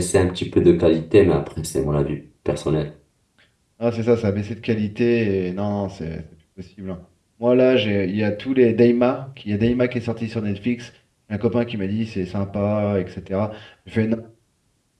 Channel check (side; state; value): both; identical; correlation 1.00